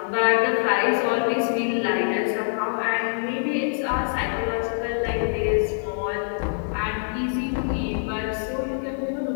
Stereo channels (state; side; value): silent; right; digital silence